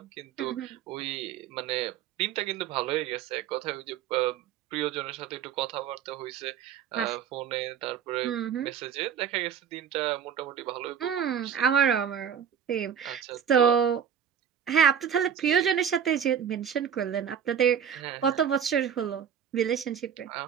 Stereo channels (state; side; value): quieter; left; 8.3 dB